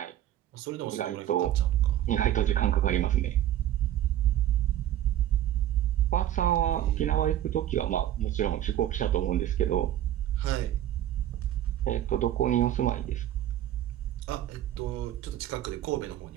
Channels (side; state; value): left; quieter; 12.2 dB